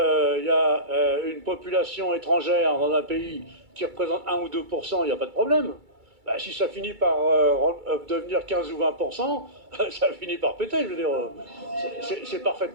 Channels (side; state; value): left; late; 2.3 ms